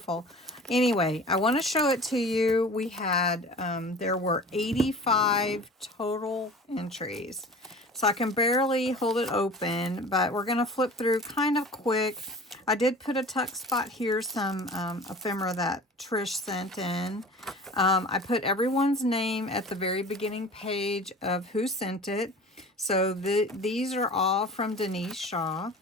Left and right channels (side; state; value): both; normal; correlation 0.40